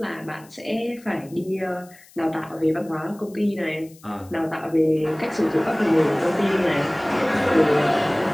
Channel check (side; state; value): left; noise; hiss, 25 dB below the sound